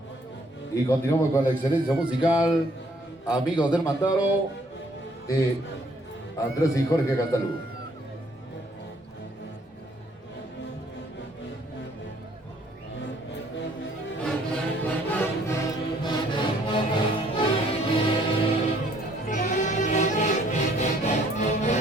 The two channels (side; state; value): both; normal; correlation 0.63